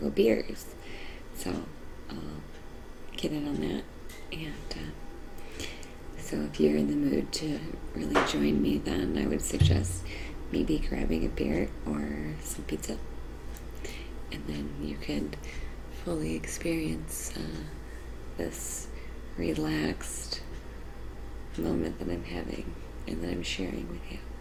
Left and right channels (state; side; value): identical; both; correlation 1.00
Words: beers. So I'll get in on that, and so if you're in the mood to really join me, then I would suggest maybe grabbing a beer or some pizza. And then you could fully experience this relaxed moment that I'm having and that I'm sharing with you.